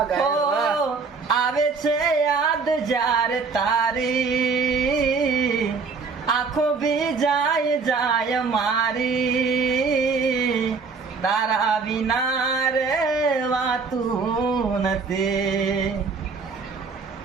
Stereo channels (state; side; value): quieter; left; 4.8 dB